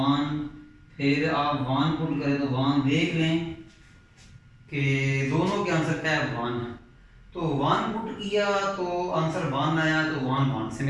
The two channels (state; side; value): identical; both; correlation 1.00